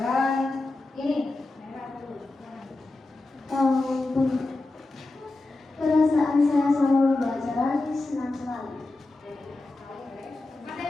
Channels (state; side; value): quieter; right; 3.0 dB